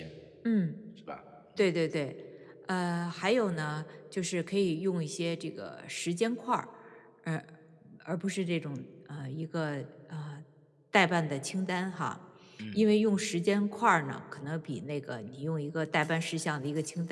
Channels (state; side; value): identical; both; correlation 1.00